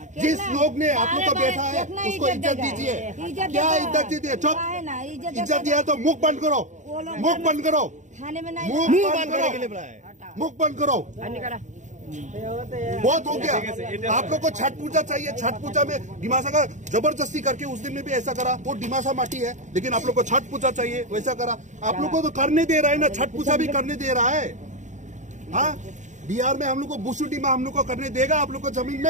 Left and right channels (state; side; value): late; left; 0.35 ms